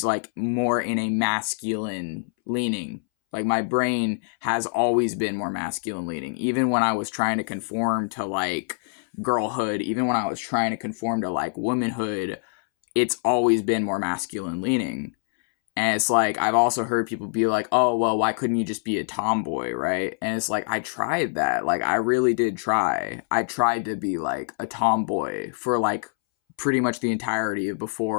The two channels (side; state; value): right; silent; 62 dB below the other